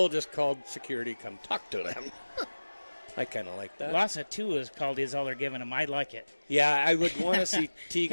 just called security, come talk to them. I kind of like that. Loss of 2 is called is all they're giving him. I like it. Yeah, I would want to see Teagan.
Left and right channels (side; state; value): both; inverted; correlation -1.00